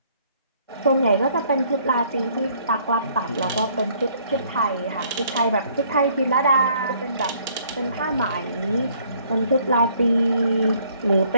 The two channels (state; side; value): inverted; both; correlation -0.63